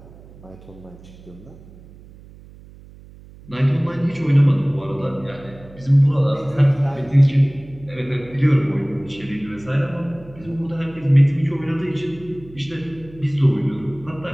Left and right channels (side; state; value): right; noise; hum, 21 dB below the sound